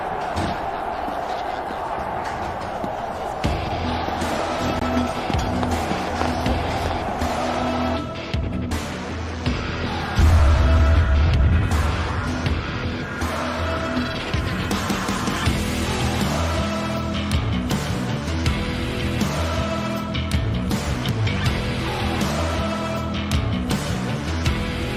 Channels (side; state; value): both; identical; correlation 1.00